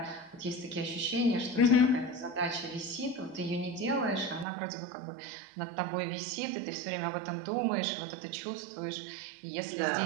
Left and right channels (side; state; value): left; drops out; at 4.5 s